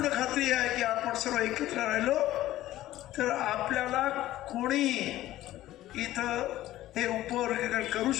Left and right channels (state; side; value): quieter; right; 14.8 dB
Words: खात्री आहे की आपण सर्व एकत्र राहिलो तर आपल्याला कोणी इथं हे उपवर्गीकरण करू